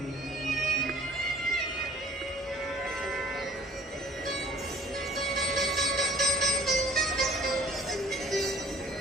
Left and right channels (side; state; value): both; normal; correlation 0.53